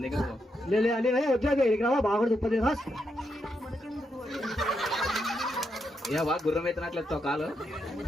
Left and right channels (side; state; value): both; normal; correlation 0.82